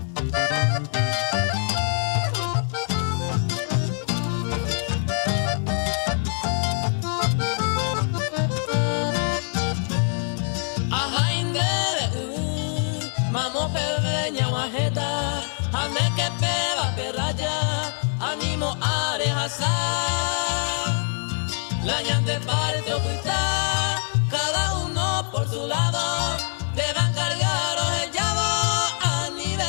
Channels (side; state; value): right; silent; 62 dB below the other